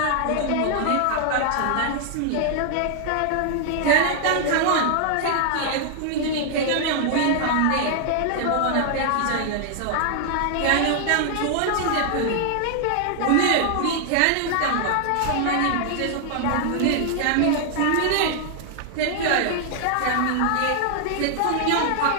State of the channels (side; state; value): both; different; correlation 0.00